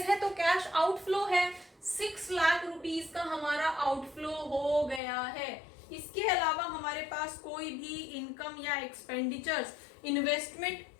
है तो कैश आउटफ्लो है, 6 लाख रुपीस का हमारा आउटफ्लो हो गया है। इसके अलावा हमारे पास कोई भी इनकम या एक्सपेंडिचर्स इन्वेस्टमेंट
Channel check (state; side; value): drops out; right; at 5.0 s